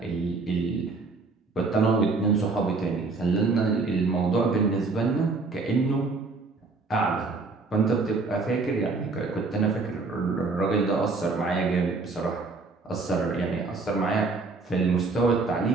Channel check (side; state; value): left; quieter; 3.9 dB